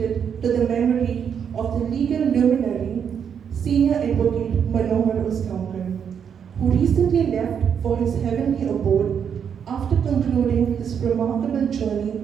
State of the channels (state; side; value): quieter; left; 7.7 dB